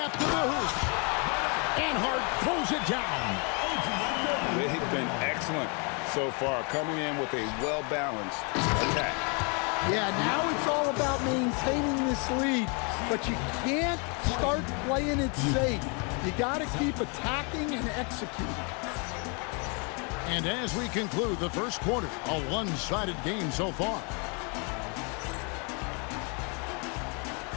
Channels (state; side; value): quieter; right; 34.6 dB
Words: to the hoop. And Hart throws it down. They've been excellent so far, coming in with a well-balanced attack. Yeah, now it's all about maintaining this lead, but you can't start playing it safe. You got to keep attacking and executing. And as we conclude the first quarter, a one-sided game so far.